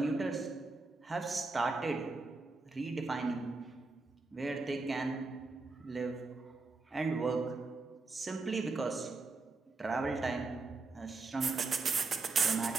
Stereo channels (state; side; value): quieter; left; 3.7 dB